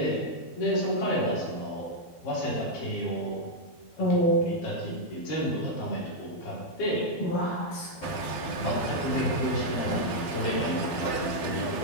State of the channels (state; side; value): late; right; 12 ms